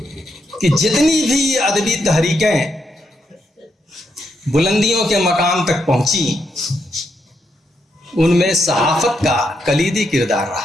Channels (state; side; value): normal; both; correlation 0.80